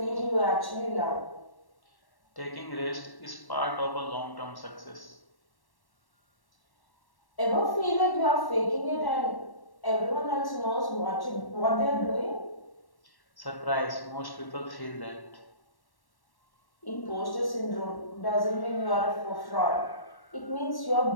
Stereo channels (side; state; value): right; late; 1.1 ms